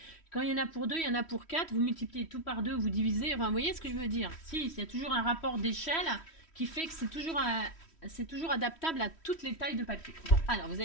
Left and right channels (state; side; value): late; right; 3.1 ms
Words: quand il y en a pour 2, il y en a pour 4, vous multipliez tout par 2, vous divisez. Enfin, vous voyez ce que je veux dire? Si, il y a toujours un rapport d'échelle qui fait que c'est toujours adaptable à toutes les tailles de papier. Bon, alors, vous